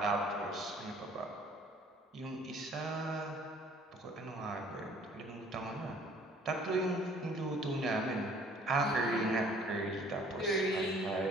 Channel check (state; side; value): normal; both; correlation 0.56